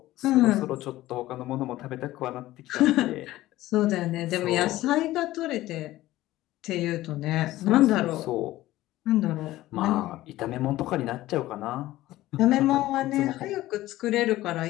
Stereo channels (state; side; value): quieter; right; 16.1 dB